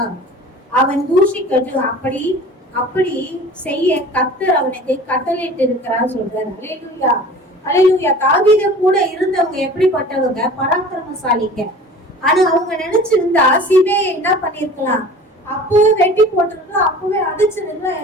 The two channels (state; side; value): normal; both; correlation 0.42